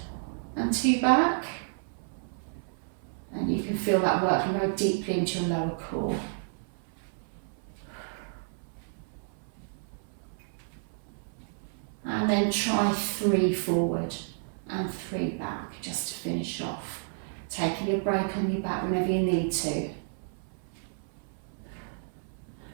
and 2 back. And you can feel that working very deeply into your lower core. And then try 3 forward and 3 back, just to finish off. Taking a break on your back whenever you need to.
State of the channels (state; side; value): silent; left; 57 dB below the other